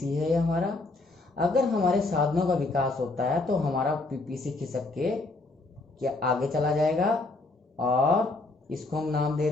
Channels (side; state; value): right; quieter; 3.2 dB